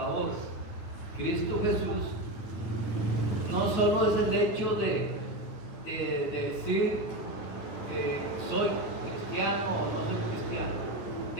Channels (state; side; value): late; right; 9.7 ms